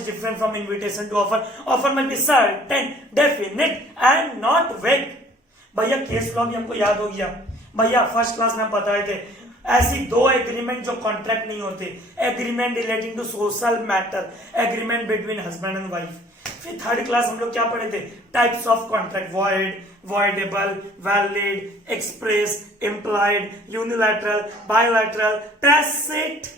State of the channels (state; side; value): normal; both; correlation 0.54